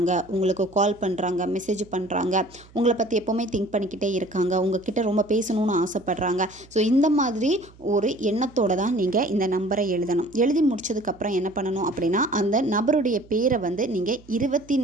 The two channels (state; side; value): noise; right; hum, 25 dB below the sound